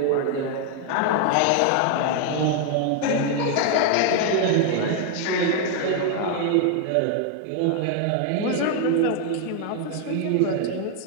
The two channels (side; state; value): both; different; correlation 0.01